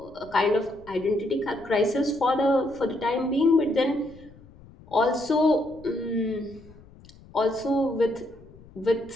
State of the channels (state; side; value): noise; left; rumble, 23 dB below the sound